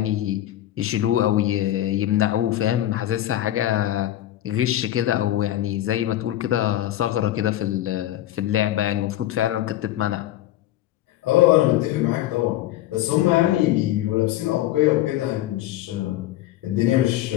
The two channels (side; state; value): right; quieter; 13.8 dB